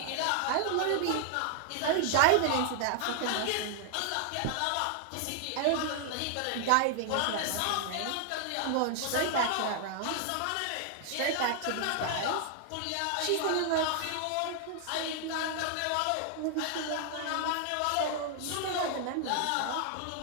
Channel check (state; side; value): different; both; correlation 0.00